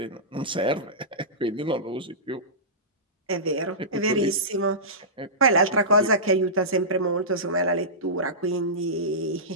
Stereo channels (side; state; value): both; normal; correlation -0.19